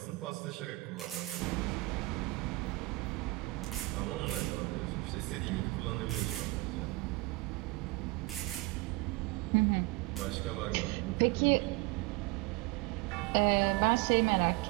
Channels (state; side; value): quieter; left; 23.0 dB